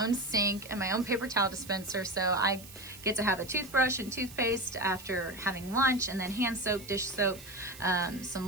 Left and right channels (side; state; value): right; noise; hiss, 17 dB below the sound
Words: own sink and my own paper towel dispenser, so I get to have a toothbrush and toothpaste after having lunch, and then hand soap, dish soap,